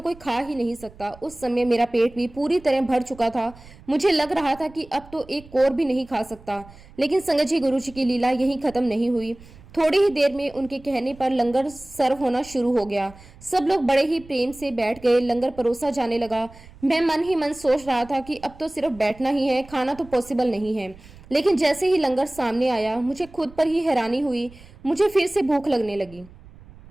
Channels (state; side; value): noise; right; rumble, 21 dB below the sound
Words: कोई खा ही नहीं सकता। उस समय मेरा पेट भी पूरी तरह भर चुका था। मुझे लग रहा था कि अब तो एक कोर भी नहीं खा सकता। लेकिन संगत जी, गुरुजी की लीला यहीं खत्म नहीं हुई। थोड़ी ही देर में उनके कहने पर लंगर सर्व होना शुरू हो गया। सब लोग बड़े ही प्रेम से बैठ गए। लंगर परोसा जाने लगा। मैं मन ही मन सोच रहा था कि अब तो सिर्फ बैठना ही है, खाना तो पॉसिबल नहीं है। लेकिन जैसे ही लंगर सामने आया मुझे खुद पर ही हैरानी हुई। मुझे फिर से भूख लगने लगी।